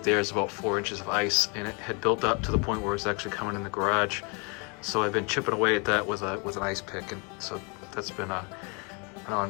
there is about 4 inches of ice, and it had built up to the point where it was actually coming in the garage. So I've been chipping away at that with an ice pick, and so that's been an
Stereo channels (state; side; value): quieter; right; 32.7 dB